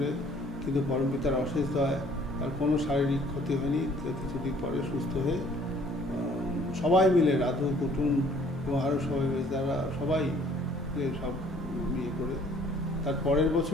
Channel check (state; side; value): normal; both; correlation 0.57